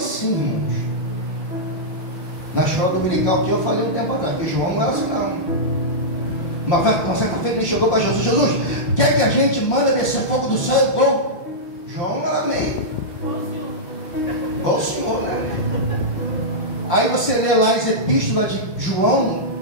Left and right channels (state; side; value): late; right; 5.7 ms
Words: irmãos. Na escola dominical que eu falei um tempo atrás, que João não era assim não. Uma certa feita ele chegou para Jesus: Jesus, quer que a gente manda descer fogo do céu igual? João era meio igual o Senhor, né? Aí você lê lá as epístolas de João,